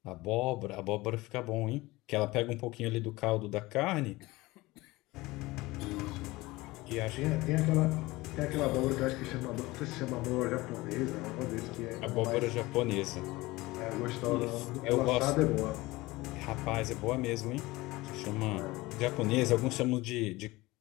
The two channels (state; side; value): quieter; right; 20.5 dB